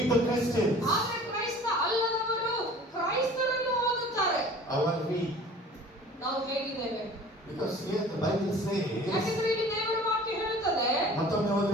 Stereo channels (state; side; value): normal; both; correlation 0.46